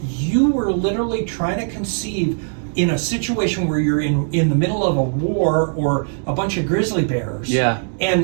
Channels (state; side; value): silent; left; digital silence